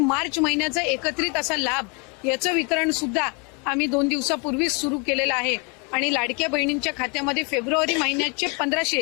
महिन्याचा एकत्रित असा लाभ याचं वितरण सुद्धा आम्ही 2 दिवसापूर्वीच सुरू केलेलं आहे आणि लाडक्या बहिणींच्या खात्यामध्ये फेब्रुवारी महिन्याचे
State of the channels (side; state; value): right; quieter; 33.0 dB